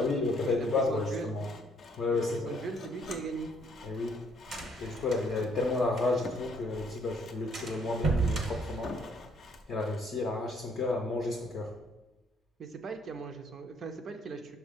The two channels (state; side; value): normal; both; correlation 0.66